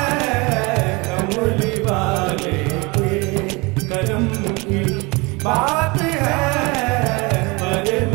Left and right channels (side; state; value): left; quieter; 25.7 dB